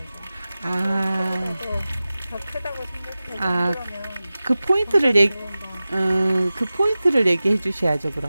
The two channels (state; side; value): inverted; both; correlation -0.96